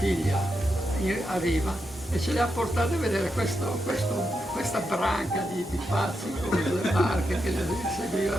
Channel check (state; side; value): normal; both; correlation 0.85